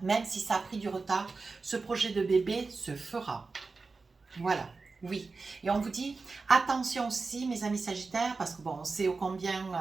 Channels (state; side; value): quieter; left; 4.1 dB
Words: même si ça a pris du retard, ce projet de bébé se fera. Voilà, oui. Et on vous dit, attention aussi, mes amis Sagittaires, parce que bon, on sait ô combien,